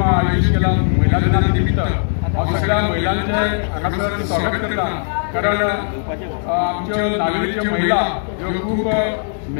आयोजीत केला महिला दिना निमित्त। हांव सगळ्या महिलांचे हांगासर स्वागत करता, कारण आमच्यो नागरीच्यो महिला ह्यो खूब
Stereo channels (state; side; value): silent; right; 67 dB below the other